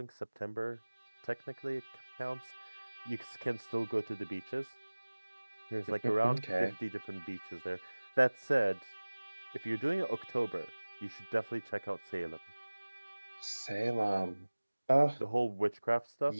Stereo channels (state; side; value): inverted; both; correlation -1.00